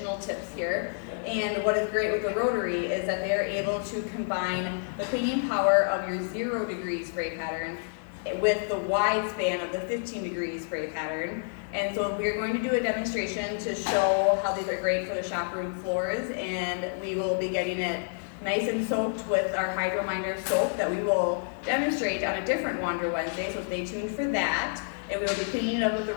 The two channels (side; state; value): right; silent; digital silence